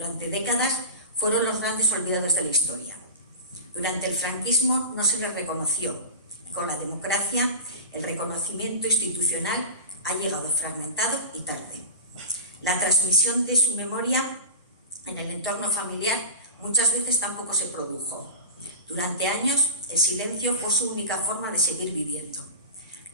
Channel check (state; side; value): inverted; both; correlation -0.31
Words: décadas fueron los grandes olvidados de la historia. Durante el franquismo no se les reconoció, y con la democracia el reconocimiento institucional ha llegado fragmentado y tarde. La transmisión de su memoria en el entorno familiar muchas veces tampoco se produjo. Durante años el silencio fue su única forma de seguir viviendo.